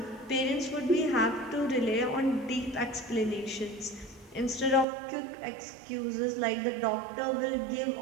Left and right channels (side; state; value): left; drops out; at 4.9 s